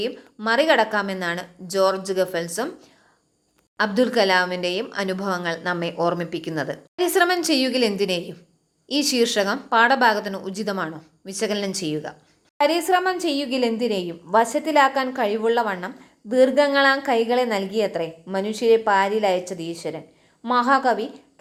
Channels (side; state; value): both; identical; correlation 1.00